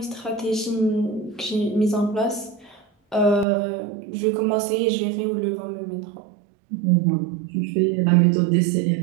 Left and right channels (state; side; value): drops out; left; at 3.5 s